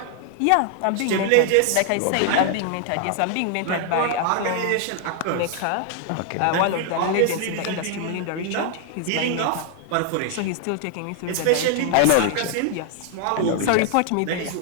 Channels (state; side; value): different; both; correlation 0.00